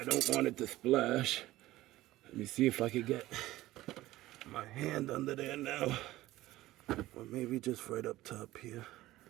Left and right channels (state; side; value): quieter; left; 16.6 dB